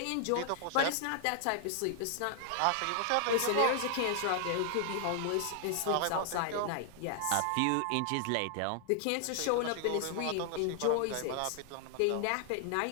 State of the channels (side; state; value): both; different; correlation 0.00